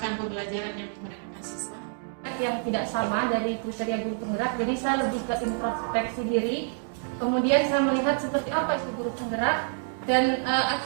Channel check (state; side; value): silent; left; digital silence